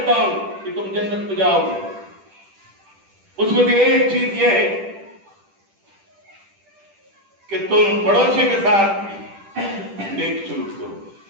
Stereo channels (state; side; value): late; left; 10 ms